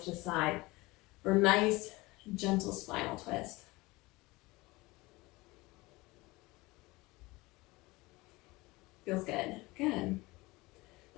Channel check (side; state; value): right; quieter; 22.0 dB